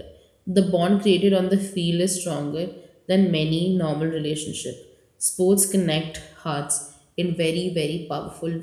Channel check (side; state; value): both; identical; correlation 1.00